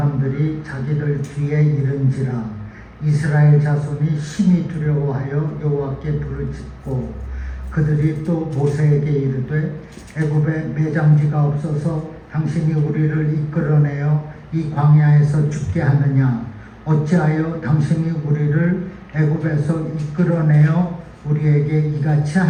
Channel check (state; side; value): identical; both; correlation 1.00